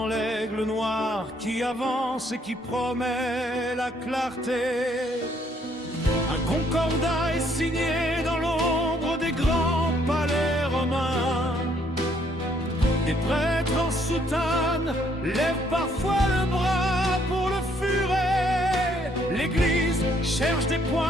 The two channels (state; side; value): normal; both; correlation 0.67